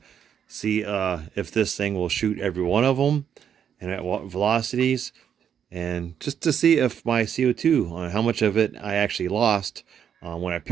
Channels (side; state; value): left; quieter; 8.4 dB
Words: see if this thing will shoot every one of them and at what velocities, and just to see if my CO2, how much of it I actually lost when I